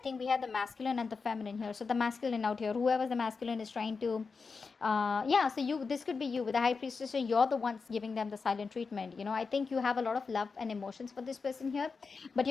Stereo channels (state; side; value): quieter; right; 4.8 dB